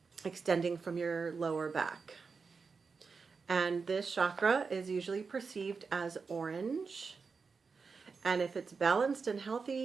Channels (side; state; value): left; quieter; 5.0 dB